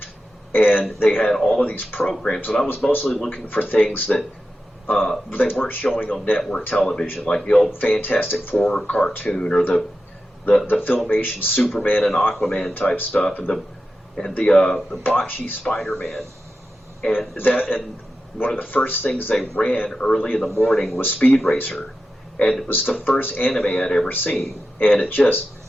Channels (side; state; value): both; normal; correlation 0.91